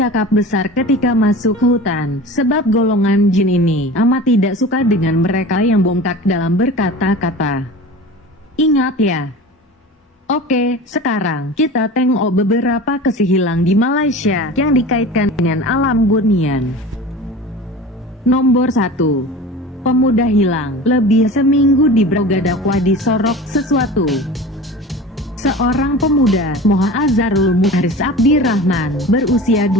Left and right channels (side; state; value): both; normal; correlation 0.36